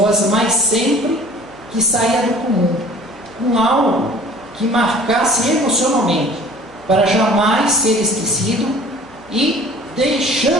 mas sempre que saia do comum, com algo que marcasse emocionalmente, para jamais ser esquecido e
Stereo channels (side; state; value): left; noise; hum, 29 dB below the sound